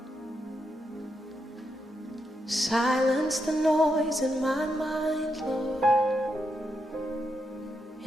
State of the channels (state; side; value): normal; both; correlation 0.83